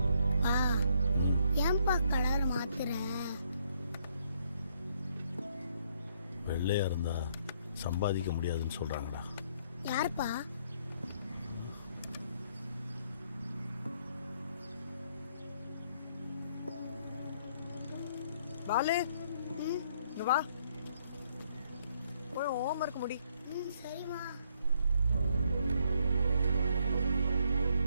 வெள்ளையா இருந்தா சம்பாதிக்க முடியாதுன்னு சொல்றாங்கடா. யாருப்பா? பாலு, இங்க வா போய் ஹோம்வொர்க் முடி. சரிம்மா.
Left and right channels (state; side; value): inverted; both; correlation -0.70